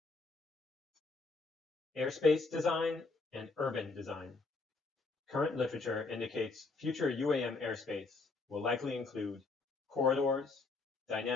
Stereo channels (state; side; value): quieter; right; 3.9 dB